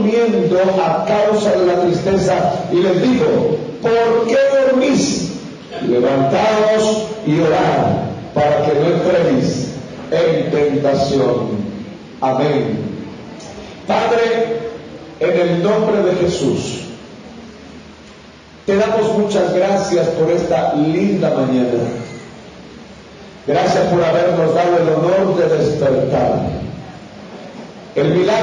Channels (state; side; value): identical; both; correlation 1.00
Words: a causa de la tristeza, y les dijo: ¿por qué dormís? Levantaos y orad, para que no entréis en tentación. Amén. Padre, en el nombre de Jesús, te damos muchas gracias por esta linda mañana. Gracias por habernos dado el honor de despertar. El